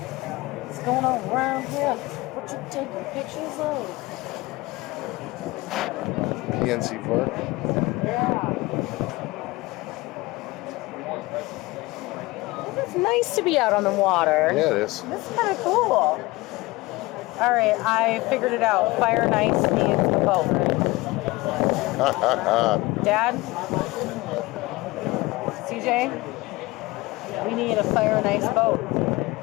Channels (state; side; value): quieter; right; 21.4 dB